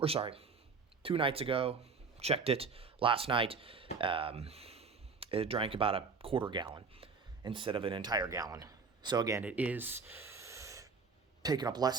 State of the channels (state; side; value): quieter; left; 5.0 dB